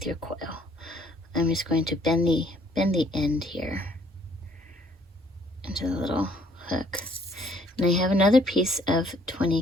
your coil. I'm just going to bend the end here into the little hook. And I have another piece of 20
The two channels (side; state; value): both; normal; correlation 0.62